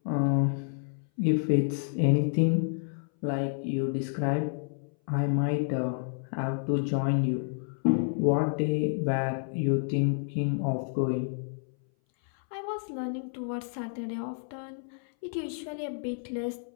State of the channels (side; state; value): right; silent; 58 dB below the other